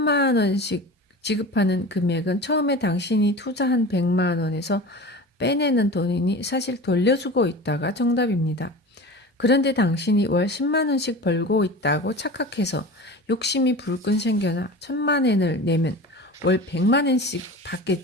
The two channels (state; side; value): normal; both; correlation 0.34